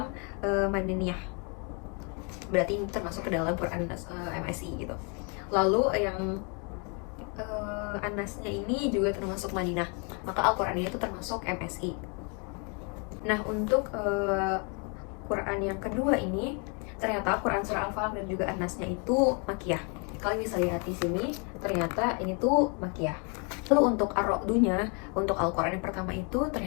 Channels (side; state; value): right; quieter; 35.6 dB